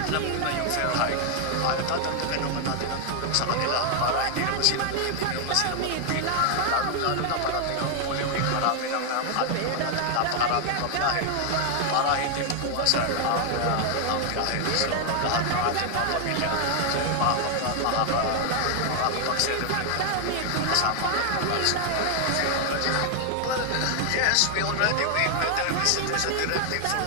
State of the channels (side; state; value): both; different; correlation 0.00